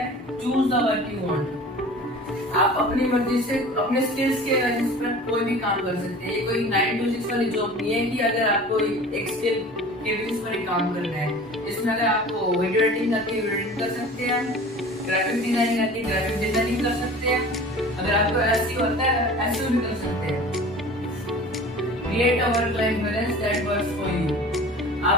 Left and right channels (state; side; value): normal; both; correlation 0.41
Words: Choose the work you want. आप अपनी मर्जी से अपने स्किल्स के बेसिस पर कोई भी काम कर सकते हैं. ये कोई 9 to 6 वाली जॉब नहीं है कि अगर आपको एक स्किल के बेसिस पर ही काम करना है. इसमें अगर आपको वीडियो एडिटिंग आती है वीडियो एडिटिंग कर सकते हैं, ग्राफिक डिजाइनिंग आती है ग्राफिक डिजाइनिंग कर सकते हैं, अगर आपको एसईओ आता है एसईओ भी कर सकते हैं. Create a work life balance that works for you.